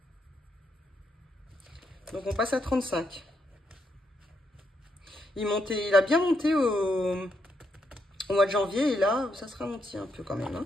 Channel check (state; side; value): normal; both; correlation 0.79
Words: Donc on passe à 35. Il a bien monté au mois de janvier et là ça se ralentit un peu quand même.